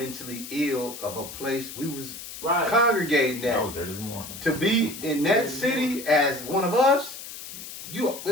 ill of a place we was congregating at. To be in that city as one of us, you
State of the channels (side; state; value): left; noise; hiss, 12 dB below the sound